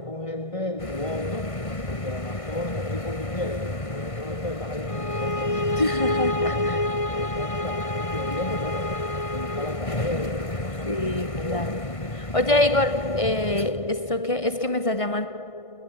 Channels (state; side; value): late; right; 1.5 ms